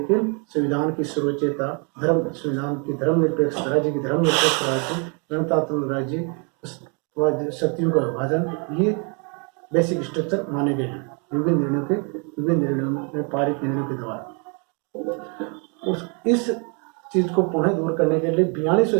संविधान की सर्वोच्चता, संविधान की धर्मनिरपेक्ष राज्य की धर्मनिरपेक्ष राज्य, गणतंत्र राज्य, शक्तियों का विभाजन, ये बेसिक स्ट्रक्चर माने गए हैं विभिन्न निर्णयों में पारित निर्णयों के द्वारा। इस चीज को पुनः दूर करने के लिए 42वें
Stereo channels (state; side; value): quieter; left; 36.0 dB